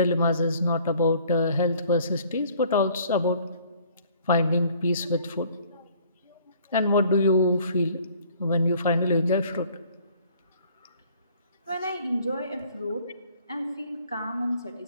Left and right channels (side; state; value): both; inverted; correlation -0.56